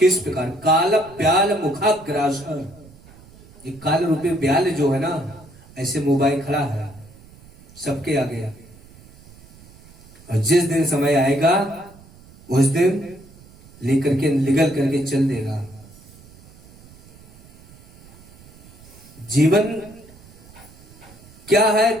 प्रकार? काल ब्याल मुखाग्रास। ये काल रूपी ब्याल जो है ना, ऐसे मोबाइल खड़ा है सबके आगे, और जिस दिन समय आएगा उस दिन लेकर के निगल करके चल देगा। जीवन क्या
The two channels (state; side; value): noise; right; rumble, 23 dB below the sound